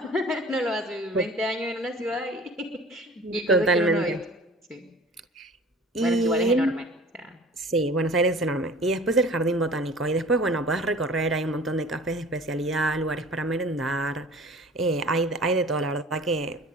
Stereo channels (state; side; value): normal; both; correlation 0.44